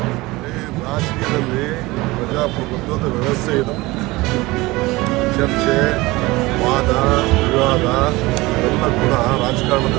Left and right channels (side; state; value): left; quieter; 21.1 dB